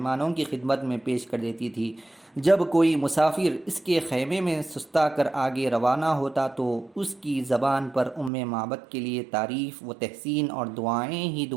کی خدمت میں پیش کر دیتی تھی۔ جب کوئی مسافر اس کے خیمے میں سستا کر آگے روانہ ہوتا تو اس کی زبان پر معبد کے لیے تعریف و تحسین اور دعائیں ہی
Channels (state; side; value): drops out; left; at 8.3 s